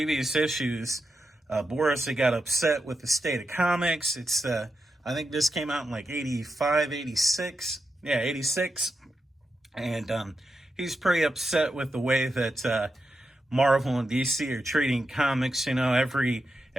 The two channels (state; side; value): normal; both; correlation 0.87